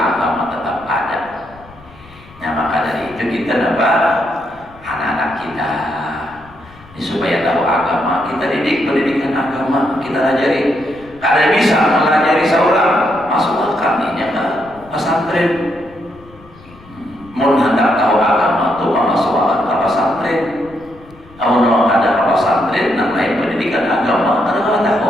tetap ada. Nah, maka dari itu kita dapat anak-anak kita ini supaya tahu agama, kita didik pendidikan agama, kita ajari. Kada bisa mengajari seorang masuk akaminya ke pesantren. Mun hendak tahu agama itu masuk ke pesantren. Kalau ada ke pesantren, namanya pendidikan agama, kada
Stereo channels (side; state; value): left; noise; rumble, 24 dB below the sound